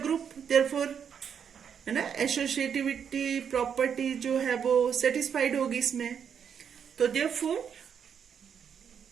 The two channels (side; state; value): left; quieter; 7.6 dB